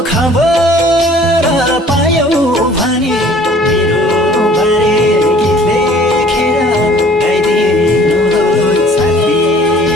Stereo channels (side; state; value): both; normal; correlation 0.52